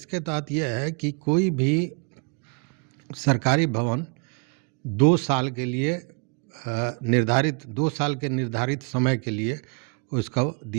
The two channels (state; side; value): quieter; left; 33.5 dB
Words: तहत यह है कि कोई भी सरकारी भवन 2 साल के लिए निर्धारित 2 साल के निर्धारित समय के लिए उसको